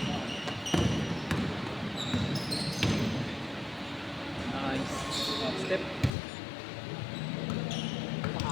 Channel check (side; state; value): right; drops out; at 6.1 s